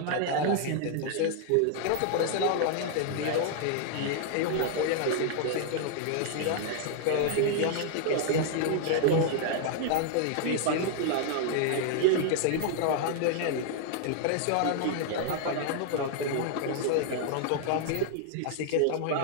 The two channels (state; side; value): different; both; correlation 0.00